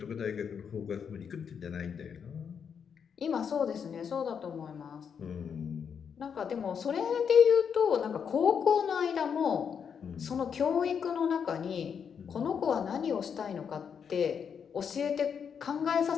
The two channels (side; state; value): right; quieter; 7.1 dB